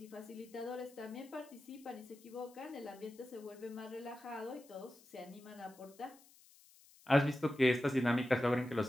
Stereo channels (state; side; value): noise; left; hiss, 25 dB below the sound